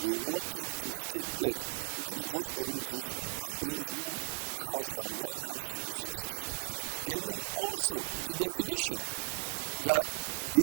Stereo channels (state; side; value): silent; left; 53 dB below the other